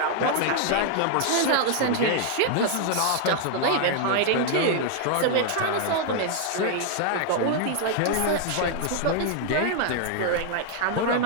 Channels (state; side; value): different; both; correlation 0.00